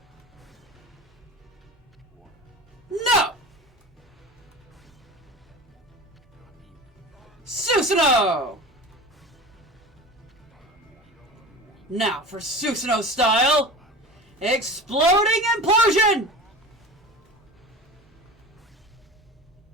No! Susanoo! Now for Susanoo style. Exploding implosion!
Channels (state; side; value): normal; both; correlation 0.34